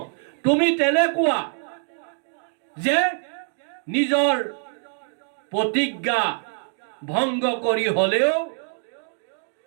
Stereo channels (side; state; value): left; silent; 62 dB below the other